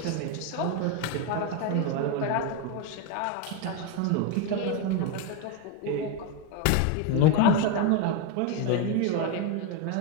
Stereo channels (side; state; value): both; different; correlation 0.02